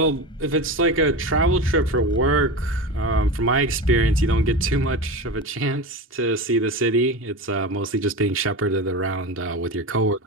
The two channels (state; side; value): normal; both; correlation 0.24